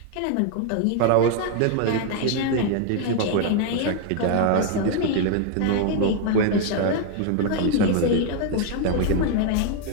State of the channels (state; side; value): different; both; correlation 0.00